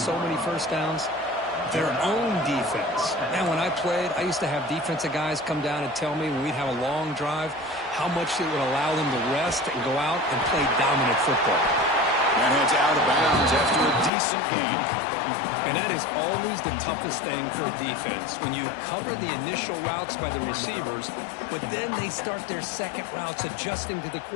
many 1st downs? Their own defense. Man, when I played, I used to have defensive guys come down and tell me when we'd have a long drive how much it would allow them to rest and go out and play dominant football. That heads out of bounds after a decent gain. And that is always the toughest thing for a defense, when you cover the initial routes by the receivers, but then they start their second routes adjusting to the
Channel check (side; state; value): right; drops out; at 14.1 s